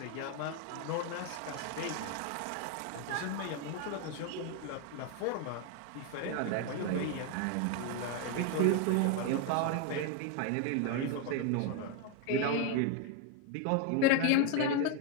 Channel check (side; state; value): both; different; correlation 0.01